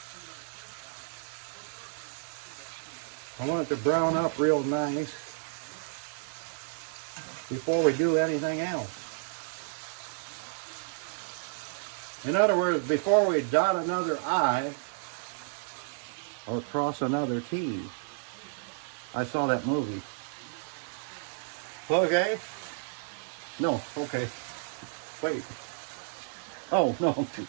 I want it to brown up real nice before we do anything else. In other words, before we dot another I or cross another T. I saw that movie. Okay. No, okay. Wait. Oh, no.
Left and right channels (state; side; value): silent; left; 57 dB below the other